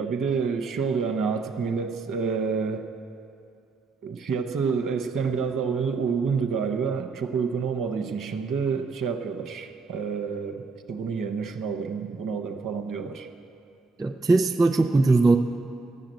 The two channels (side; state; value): left; quieter; 4.1 dB